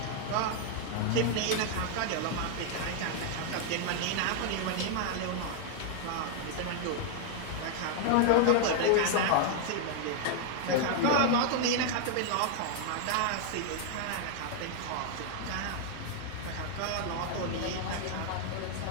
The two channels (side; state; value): both; different; correlation 0.00